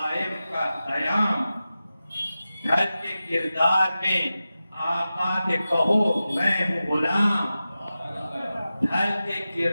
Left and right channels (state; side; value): inverted; both; correlation -0.94